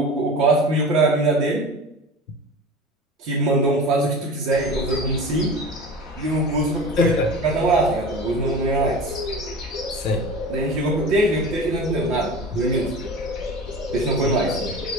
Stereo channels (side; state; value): both; normal; correlation 0.34